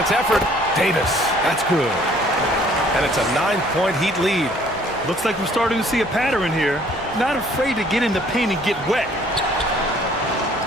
effort. Davis, that's good. And it's a 9-point Heat lead. Looks like we're starting to see a pattern here. Not afraid to get in the paint and get wet.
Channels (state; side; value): normal; both; correlation 0.58